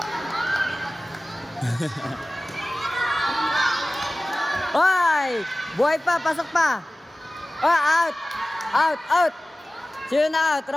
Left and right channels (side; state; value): both; normal; correlation 0.97